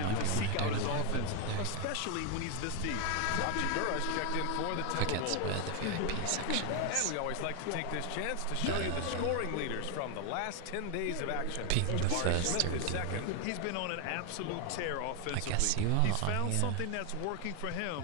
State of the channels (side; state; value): both; different; correlation 0.00